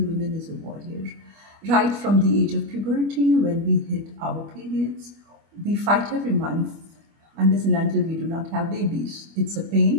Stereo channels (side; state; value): left; late; 25 ms